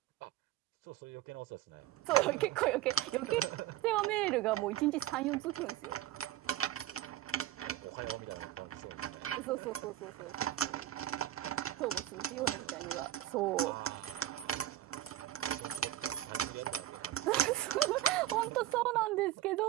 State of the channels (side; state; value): left; quieter; 13.1 dB